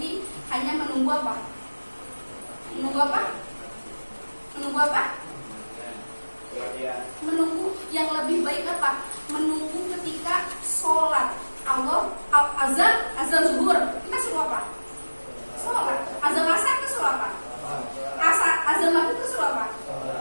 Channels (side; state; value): both; inverted; correlation -1.00